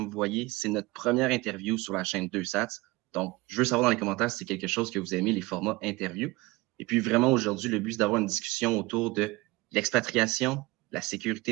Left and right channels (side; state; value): left; quieter; 21.7 dB